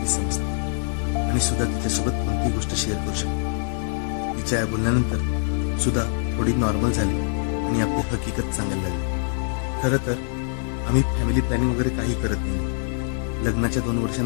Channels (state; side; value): silent; right; digital silence